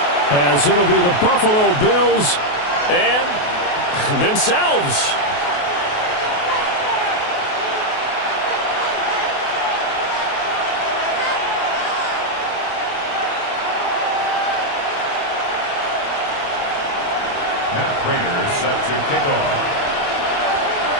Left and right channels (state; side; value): late; right; 28 ms